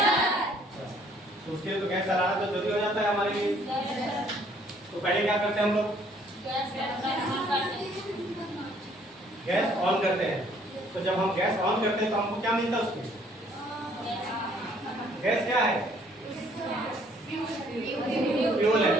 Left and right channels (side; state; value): both; normal; correlation 0.62